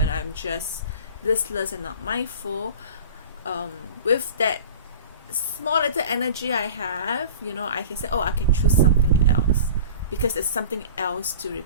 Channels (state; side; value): inverted; both; correlation -0.39